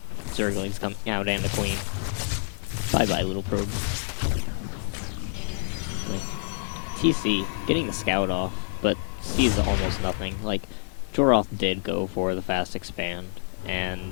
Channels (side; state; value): right; silent; digital silence